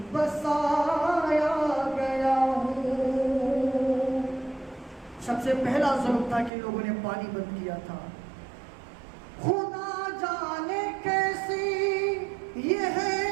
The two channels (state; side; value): drops out; left; at 6.5 s